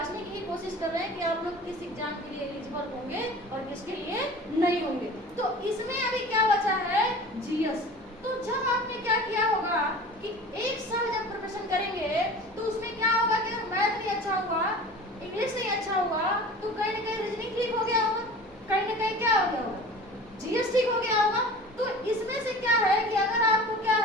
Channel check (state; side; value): normal; both; correlation 0.40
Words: की कोशिश कर रहे हैं कि आप लोग किस एग्जाम के लिए एलिजिबल होंगे और किसके लिए नहीं होंगे। तो इसमें अभी क्या बचा है, जीएस। तो जब आपने क्या किया होगा कि एक साल जब प्रिपरेशन करेंगे तो उसमें क्या होगा कि अगर मैथ नहीं अच्छा हुआ, इंग्लिश नहीं अच्छा हुआ, तो कहीं ना कहीं रीजनिंग ठीक हो गया होगा, कहीं ना कहीं क्या हो गया होगा, जीएस ठीक हो गया होगा। तो इसमें से क्या है कि अगर आपको क्या